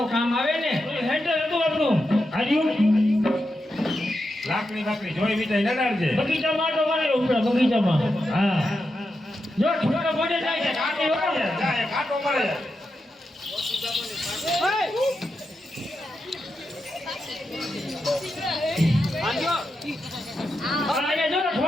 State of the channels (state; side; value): normal; both; correlation 0.87